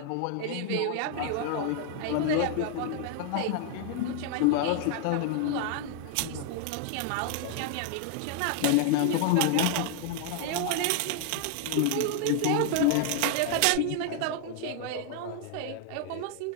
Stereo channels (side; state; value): both; different; correlation 0.00